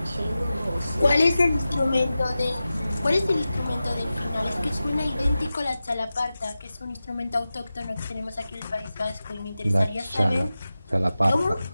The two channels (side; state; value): both; inverted; correlation -0.94